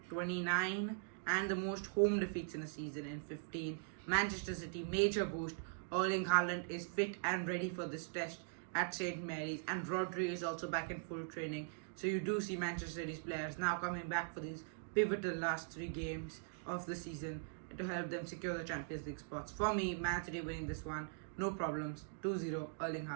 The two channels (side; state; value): left; silent; digital silence